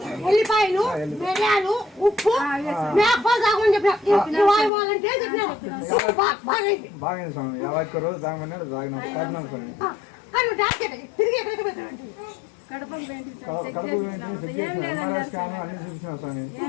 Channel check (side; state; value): right; drops out; at 4.7 s